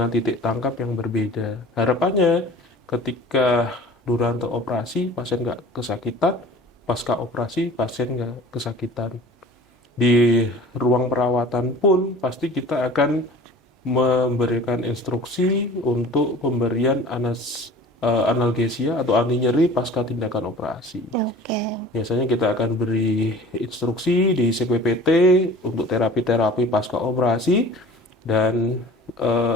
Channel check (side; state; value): both; normal; correlation 0.43